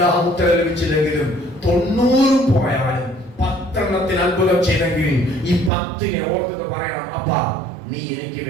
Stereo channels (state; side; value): drops out; left; at 5.7 s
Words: ഉത്തരം ലഭിച്ചില്ലെങ്കിലും 90 പോയാലും 10 അത്ഭുതം ചെയ്തെങ്കിൽ ഈ 10 ഓർത്തിട്ട് പറയണം, അപ്പാ നീ എനിക്ക്